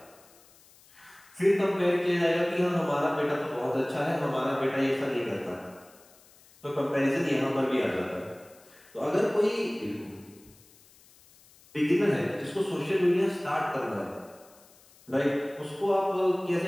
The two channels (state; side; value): noise; left; hiss, 27 dB below the sound